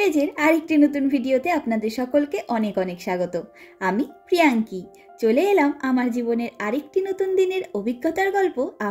আরেকটি নতুন ভিডিওতে আপনাদের সকলকে অনেক অনেক স্বাগত। আমি প্রিয়াঙ্কি চলে এলাম আমার জীবনের আরেকটি নতুন দিনের অভিজ্ঞতার গল্প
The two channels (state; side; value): identical; both; correlation 1.00